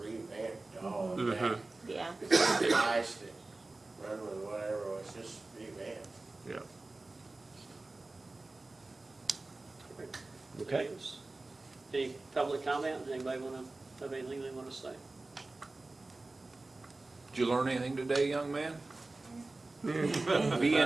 revamped all of Mhm. that. Yeah. The guys that run with whatever was just revamped. Yeah. Okay. Any public comment? Anybody have anything they want to say? Did you learn anything today, young man? Be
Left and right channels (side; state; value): left; quieter; 3.2 dB